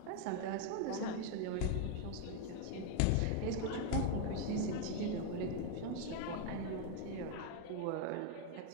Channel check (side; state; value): both; different; correlation 0.01